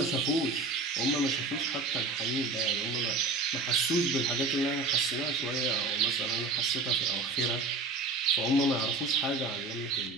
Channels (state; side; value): quieter; left; 3.5 dB